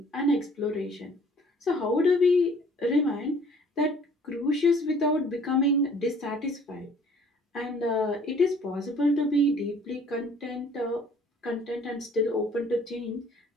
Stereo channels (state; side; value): normal; both; correlation 0.55